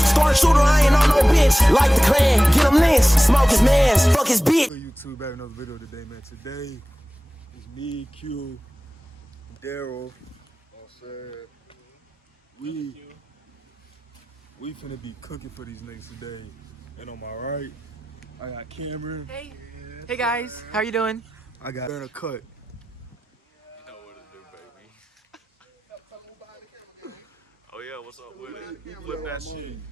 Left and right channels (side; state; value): both; normal; correlation 0.96